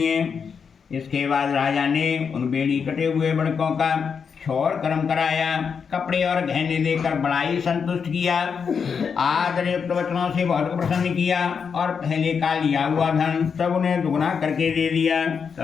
है। इसके बाद राजा ने उन बेड़ी कटे हुए बड़कों का क्षौर कर्म कराया, कपड़े और गहने देकर बड़ा ही संतुष्ट किया, आदरयुक्त वचनों से बहुत प्रसन्न किया और पहले का लिया हुआ धन सब उन्हें दुगना करके दे दिया।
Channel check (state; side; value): quieter; right; 6.3 dB